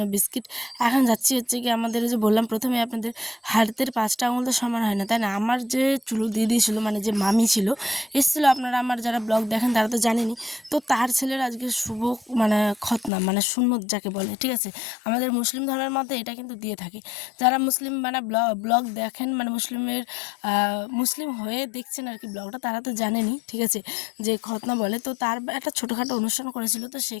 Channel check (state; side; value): drops out; right; at 13.1 s